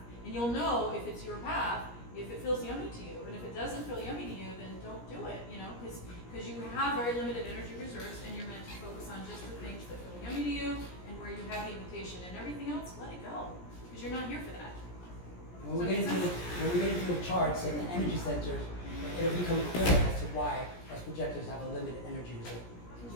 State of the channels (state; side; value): late; right; 17 ms